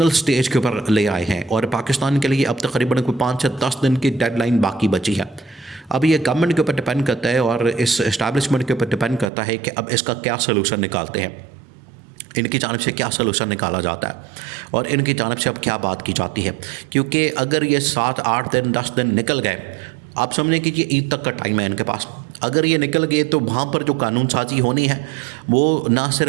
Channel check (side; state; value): left; drops out; at 9.2 s